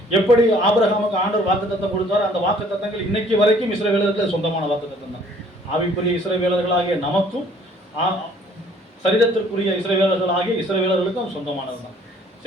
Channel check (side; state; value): both; normal; correlation 0.57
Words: எப்படி ஆபிரகாமுக்கு ஆண்டவர் வாக்கு தத்தம் கொடுத்தார், அந்த வாக்கு தத்தங்கள் இன்னைக்கு வரைக்கும் இஸ்ரவேலர்களுக்கு சொந்தமான வாக்கு தத்தம் தான். ஆவிக்குரிய இஸ்ரவேலர்களாகிய நமக்கும் சரீரத்திற்குரிய இஸ்ரவேலர்களாகிய இஸ்ரவேலர்களுக்கும் சொந்தமானது தான்.